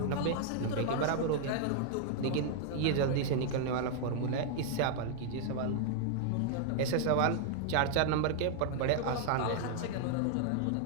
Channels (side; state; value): both; different; correlation -0.01